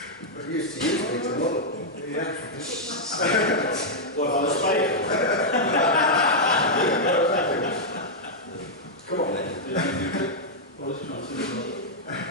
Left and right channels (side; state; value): both; normal; correlation -0.05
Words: But he used to use me to model. Yeah. What, on the spider? Come on then.